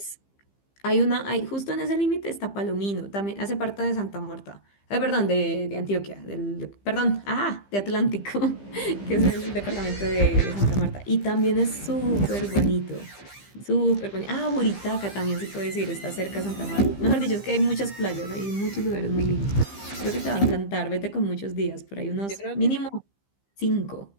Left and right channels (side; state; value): right; late; 15 ms